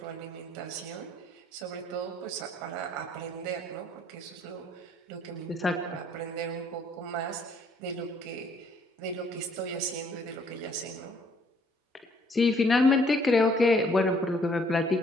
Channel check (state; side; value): normal; both; correlation 0.63